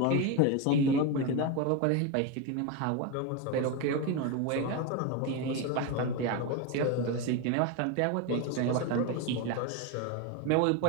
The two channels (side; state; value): both; different; correlation 0.03